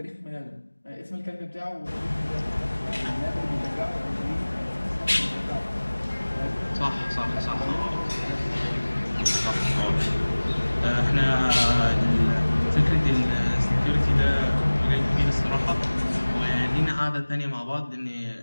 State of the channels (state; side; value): inverted; both; correlation -1.00